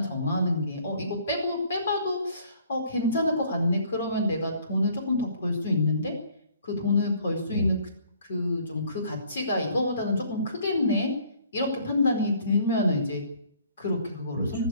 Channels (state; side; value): inverted; both; correlation -0.59